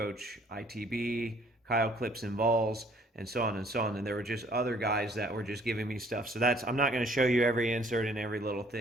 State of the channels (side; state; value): both; normal; correlation 0.60